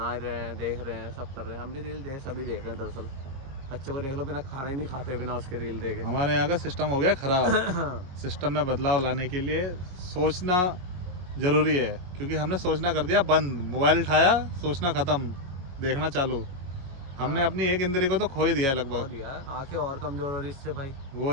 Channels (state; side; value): late; left; 22 ms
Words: रहे हैं, देख रहे हैं, सब कर रहे हैं। हम भी रील सभी देख रहे हैं दरअसल। बच्चों को देख लो, बिना खाना ही नहीं खाते बिना उसके रील देखे। हमारे यहाँ का सिस्टम हो गया खराब। सिस्टम में बदलाव लाने के लिए सोचना जरूरी है, क्योंकि हमने सोचना कर दिया बंद। मोबाइल उठाया, सोचना खत्म, देखना चालू। हमने अपनी एक इंद्री को तो खो ही दिया है हो लगभग। दिया, आंखें और कमजोर हो रही इससे भाई। वो